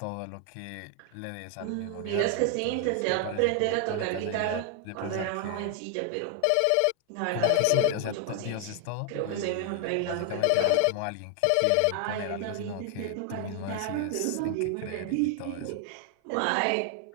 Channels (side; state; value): both; different; correlation 0.00